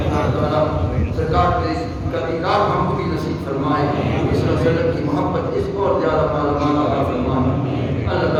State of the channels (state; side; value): identical; both; correlation 1.00